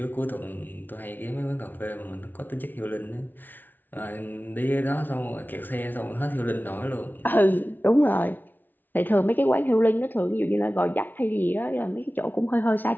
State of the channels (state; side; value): late; right; 0.088 ms